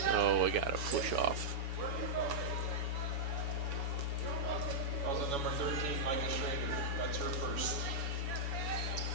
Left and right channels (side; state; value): left; late; 7.1 ms